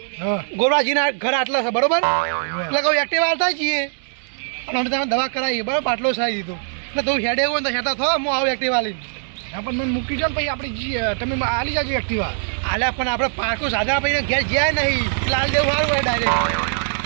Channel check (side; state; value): left; silent; 61 dB below the other